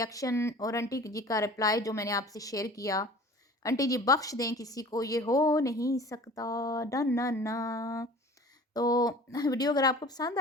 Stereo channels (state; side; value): normal; both; correlation 0.44